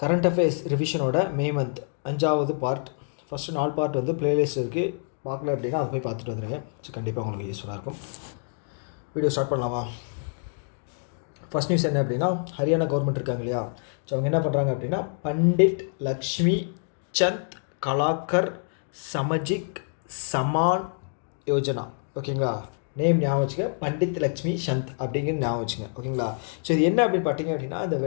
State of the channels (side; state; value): right; silent; digital silence